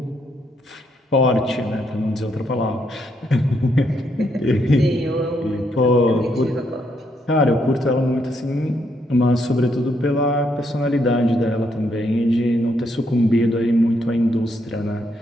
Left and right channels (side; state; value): both; normal; correlation 0.75